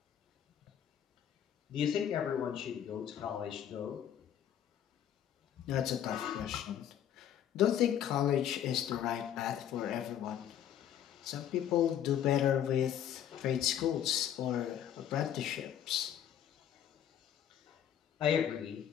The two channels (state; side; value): quieter; right; 10.0 dB